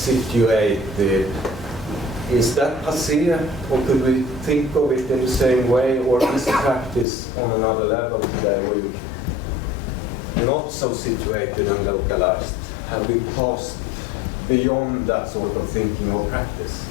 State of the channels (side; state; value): right; drops out; at 7.1 s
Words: is that passé, or could we think of it in the same way, or is practice on another level today, where you're not so situated and localized? Have we passed beyond that sort of thinking of practice,